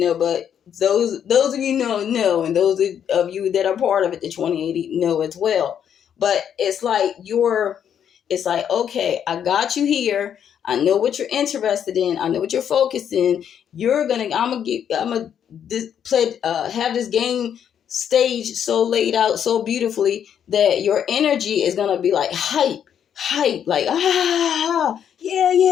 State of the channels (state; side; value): quieter; right; 8.8 dB